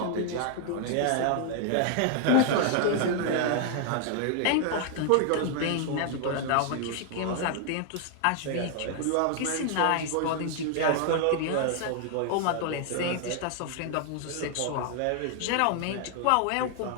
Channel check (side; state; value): both; different; correlation 0.00